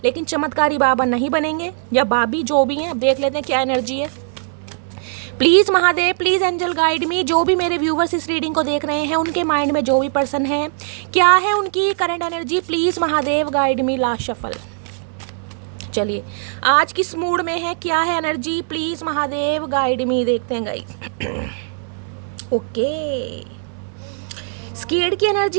लेकिन चमत्कारी बाबा नहीं बनेंगे, या बाबी जो भी हैं। देख लेते हैं क्या एनर्जी है। Please Mahadev, please angel guide me. जो भी मेरे व्यूवर्स इस रीडिंग को देख रहे हैं, उनके माइंड में जो भी पर्सन है, क्या है उनकी current energy, please Mahadev guide me. Last shuffle. चलिए आज किस मूड में है, क्या है एनर्जी, प्लीज़ महादेव गाइड मी। देखते हैं गाइस। ओके, स्केर्ड की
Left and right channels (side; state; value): left; silent; 61 dB below the other